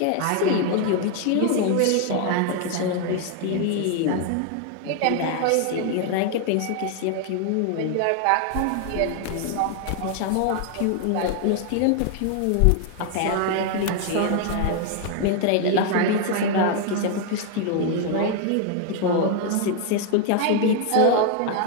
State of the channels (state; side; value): different; both; correlation 0.00